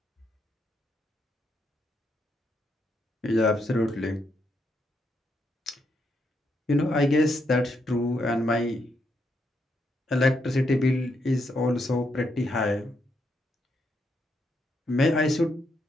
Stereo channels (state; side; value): normal; both; correlation 0.79